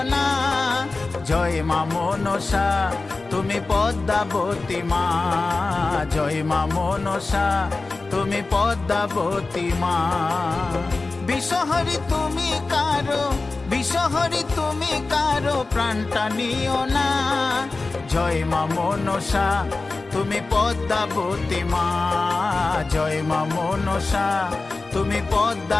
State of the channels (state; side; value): quieter; right; 3.6 dB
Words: না। জয় মা মনসা তুমি পদ্মাবতী মা, জয় মা মনসা তুমি পদ্মাবতী মা। বিষহরি তুমি কারো, বিষহরি তুমি কারো প্রাণটা নিও না। জয় মা মনসা তুমি পদ্মাবতী মা, জয় মা মনসা তুমি